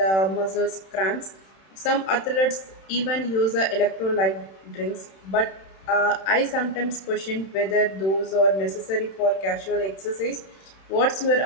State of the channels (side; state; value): right; late; 31 ms